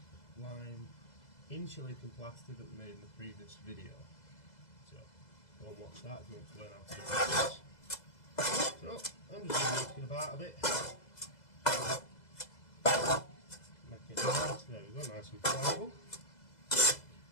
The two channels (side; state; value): right; late; 2.0 ms